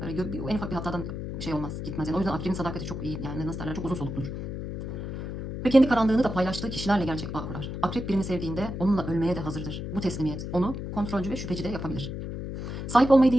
Böyle en ufak bir hatadan şey olmaz, gitmez. Yani o yüzden akrebin sadakati çok iyi. Yani nasıl derler, çok uzun solukludur. Ve kendi karanlığını da paylaştığı kişilerle gerçek bağ kurar. Akrep birini sevdiğinde onunla ölmeye de hazırdır. Bu teslimiyet onu kontrolcü ve şüpheci de yapabilir. Sahip olmayı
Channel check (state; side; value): noise; left; hum, 6 dB below the sound